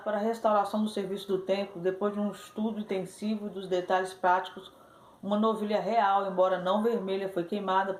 para a restauração do serviço do templo. Depois de um estudo intensivo dos detalhes práticos, uma novilha real, embora não vermelha, foi queimada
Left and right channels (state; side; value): identical; both; correlation 1.00